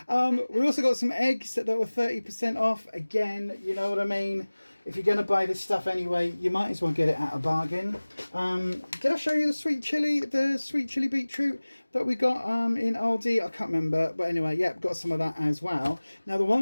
We also got some eggs that were 30% off. Again, you know what I mean? If you're going to buy this stuff anyway, you might as well get it at a bargain. Did I show you the sweet chili beetroot that we got in Aldi? I can't remember, but anyway, yeah, got some of that as well. Now, the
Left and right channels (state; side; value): inverted; both; correlation -1.00